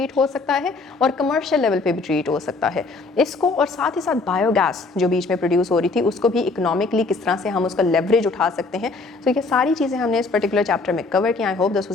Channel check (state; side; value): quieter; right; 3.8 dB